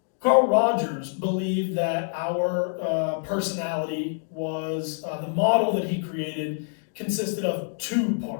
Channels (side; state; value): right; silent; digital silence